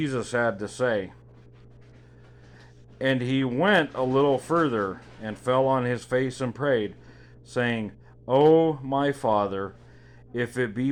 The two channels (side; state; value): both; identical; correlation 1.00